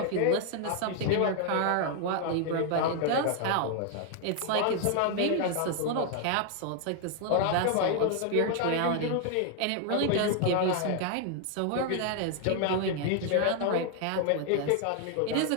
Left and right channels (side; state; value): both; different; correlation 0.00